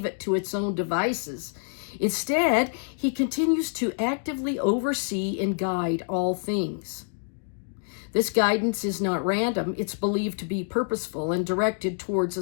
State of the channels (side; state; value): right; silent; 60 dB below the other